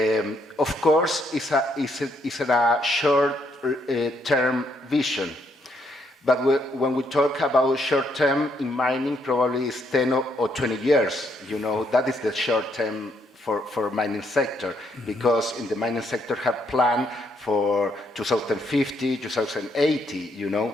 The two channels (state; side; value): normal; both; correlation 0.73